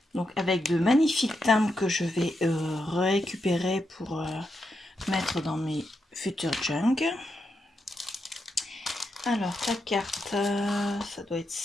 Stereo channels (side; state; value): both; normal; correlation 0.84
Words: Donc avec de magnifiques timbres que je vais récupérer pour mettre dans mes futurs junk. Alors ta carte, ça doit être